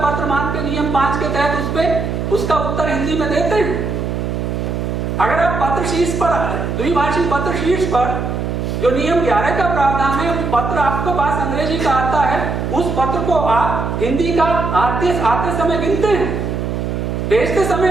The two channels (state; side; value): noise; right; hum, 2 dB below the sound